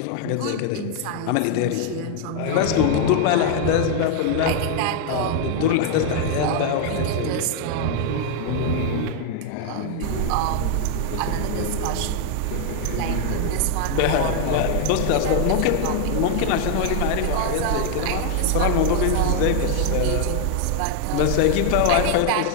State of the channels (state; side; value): different; both; correlation 0.00